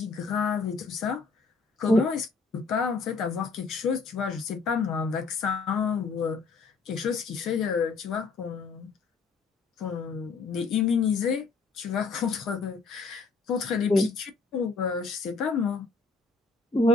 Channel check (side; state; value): right; quieter; 4.3 dB